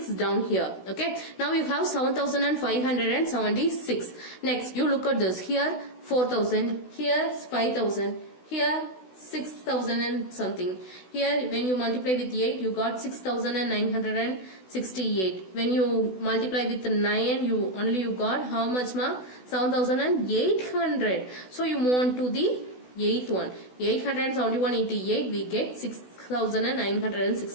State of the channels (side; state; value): right; late; 16 ms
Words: down here. Okay. Now you have 7576. Next, you look at this. Here 4000, here 5000, here 6000 and something. Here when you multiply with 8, you got 6968. When you multiply with 9, you got how much ma? 7800. So you move on to the 8th one. 871 into 8, we get